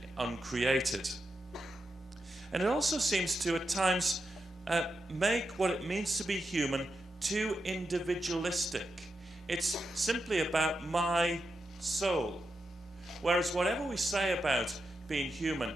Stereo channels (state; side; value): normal; both; correlation 0.87